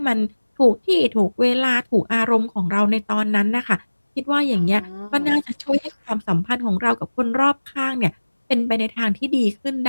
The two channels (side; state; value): both; inverted; correlation -1.00